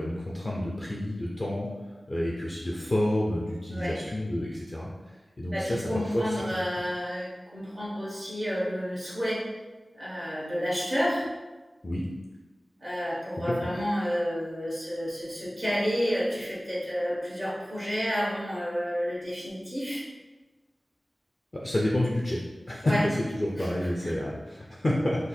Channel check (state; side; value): normal; both; correlation 0.97